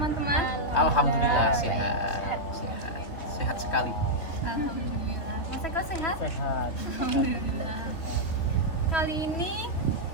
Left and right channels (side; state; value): right; late; 3.1 ms